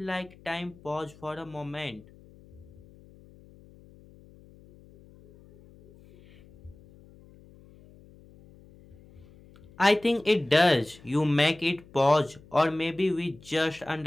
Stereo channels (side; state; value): left; noise; hum, 24 dB below the sound